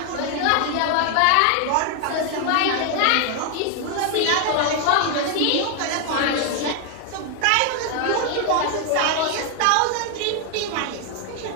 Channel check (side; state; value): both; different; correlation 0.01